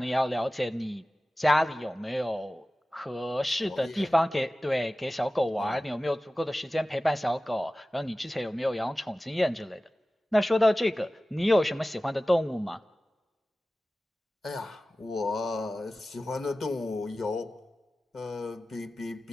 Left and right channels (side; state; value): both; normal; correlation 0.96